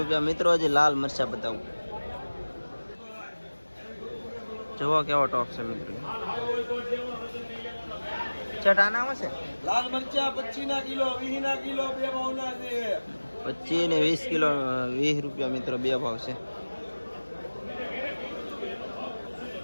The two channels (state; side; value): inverted; both; correlation -1.00